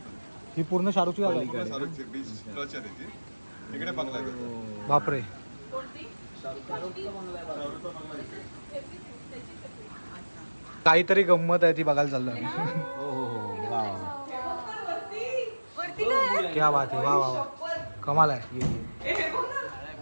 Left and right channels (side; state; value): both; inverted; correlation -1.00